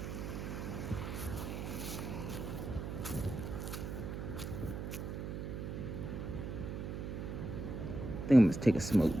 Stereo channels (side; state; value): right; noise; hum, 5 dB below the sound